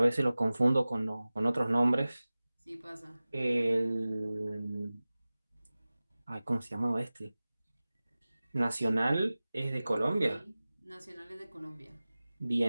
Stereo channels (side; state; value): both; inverted; correlation -0.97